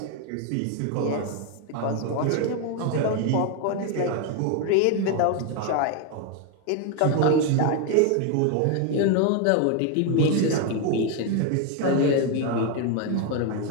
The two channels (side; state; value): both; different; correlation 0.01